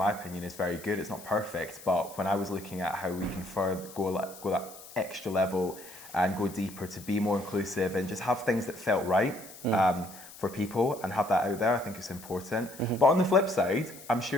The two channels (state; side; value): noise; left; hiss, 17 dB below the sound